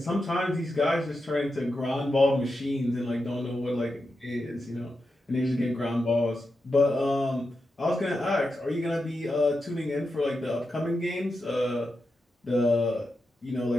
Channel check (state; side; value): normal; both; correlation 0.88